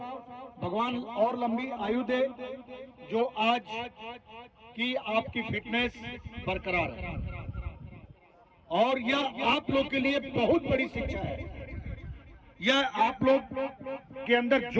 भगवान और लंबी आयु दे। जो आज की आपकी फिटनेस बरकरार है और यह आप लोग के लिए बहुत बड़ी शिक्षा है। यह आप लोग के अंदर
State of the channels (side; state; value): both; identical; correlation 1.00